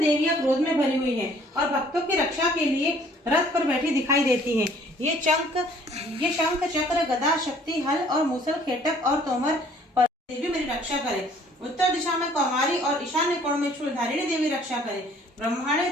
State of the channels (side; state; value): both; normal; correlation 0.57